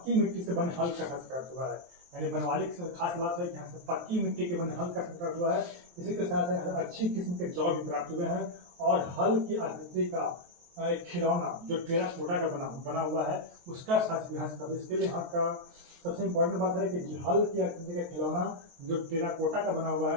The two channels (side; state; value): left; late; 23 ms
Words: मिट्टी से बने हल का प्राप्त हुआ है। यानी बनवाली की खास बात है कि यहाँ से पक्की मिट्टी के बने हल का प्राप्त हुआ है। इसी के साथ अच्छी किस्म के जौ भी प्राप्त हुए हैं। और हल की आकृति का एक खिलौना जो टेराकोटा का बना हुआ है, उसका साथ इतिहास का। इसके लिए यहाँ का सबसे इम्पोर्टेंट बात है कि हल की आकृति का खिलौना जो टेराकोटा का बना हुआ है,